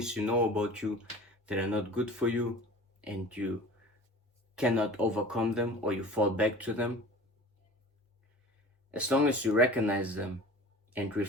you know about you that are not good for you, and you cannot overcome them, or you fall back to them. As long as you recognize them and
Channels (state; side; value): normal; both; correlation 0.40